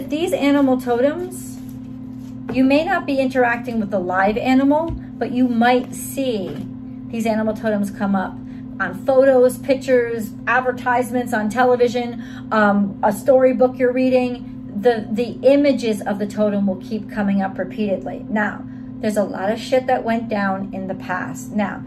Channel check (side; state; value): both; identical; correlation 1.00